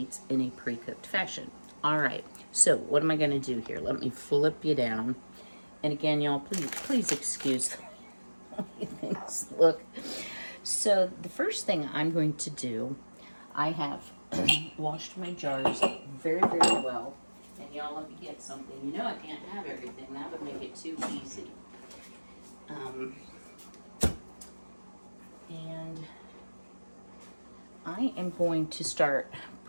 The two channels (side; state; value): both; inverted; correlation -1.00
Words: in a pre-cooked fashion. All right, so what am I gonna do here? Let me flip you down. And again, y'all, please excuse the way things look. So the first thing I'm going to do, I have washed my jars very, very well. And y'all, let me get something. You know I can't have everything. That would make it too easy. And I am going to start